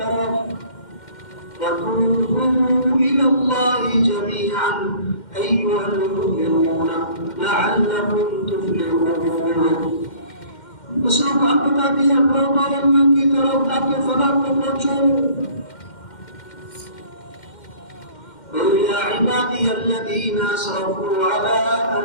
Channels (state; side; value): late; right; 2.1 ms